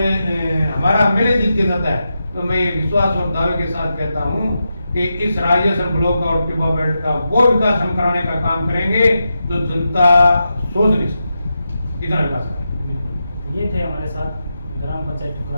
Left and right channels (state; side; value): inverted; both; correlation -0.88